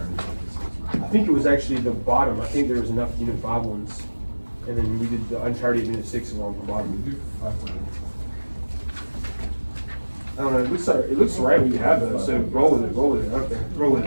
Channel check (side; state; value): both; inverted; correlation -1.00